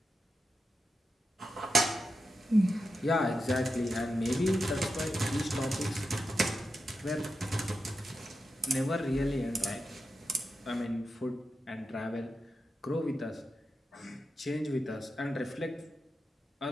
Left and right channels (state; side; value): normal; both; correlation 0.88